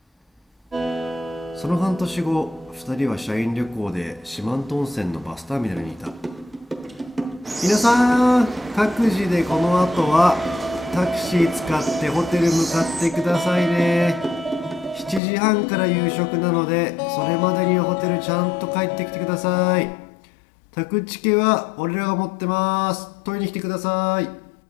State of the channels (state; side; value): drops out; right; at 15.2 s